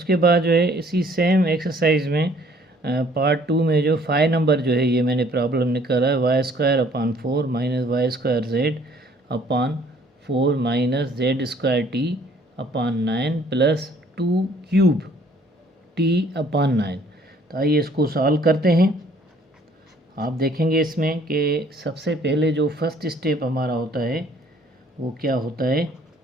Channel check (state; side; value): normal; both; correlation 0.59